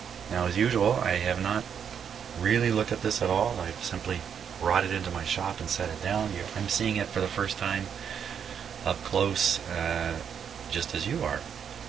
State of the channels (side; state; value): left; quieter; 7.8 dB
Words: now, as usual, I have not really looked at this at all. I've simply brought it into my shop and set it down. I'm seeing it for the first time up close, just as you are.